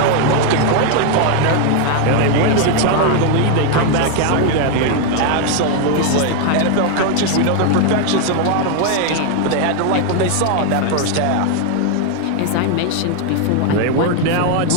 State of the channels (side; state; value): both; different; correlation 0.01